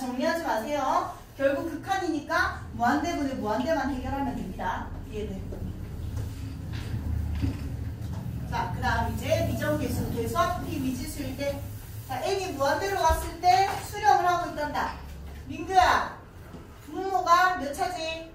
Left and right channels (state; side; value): identical; both; correlation 1.00